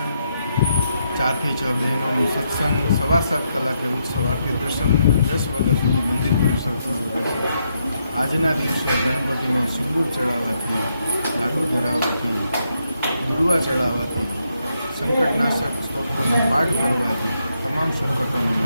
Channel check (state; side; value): inverted; both; correlation -0.79